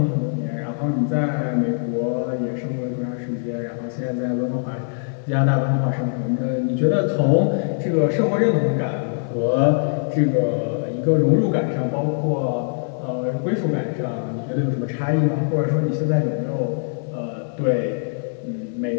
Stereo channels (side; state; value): right; silent; 63 dB below the other